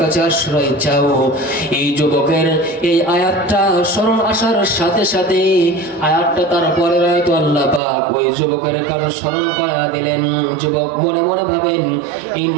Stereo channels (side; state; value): left; drops out; at 7.8 s